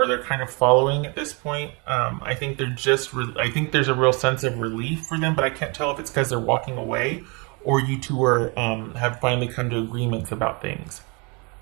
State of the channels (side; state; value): left; quieter; 30.6 dB